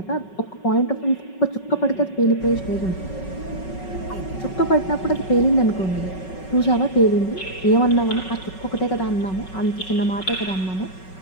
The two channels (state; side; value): late; right; 5.4 ms